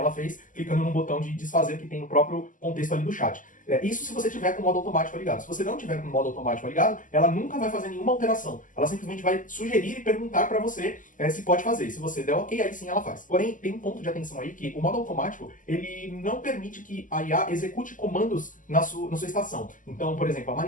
fez, clicando no botão de desfazer que tem no próprio contexto ali do chat. Isso se você tiver com o modo automático ligado. Se você não tiver com o modo automático ligado, ela nunca vai fazer nenhuma alteração. Ela simplesmente vai sugerir e perguntar para você se pode fazer. Se você der ok, aí sim ela faz. Porém, tem um ponto de atenção aí que o modo automático, ele não permite que a IA execute comandos na sua estação. Então, por exemplo, a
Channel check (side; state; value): right; late; 0.38 ms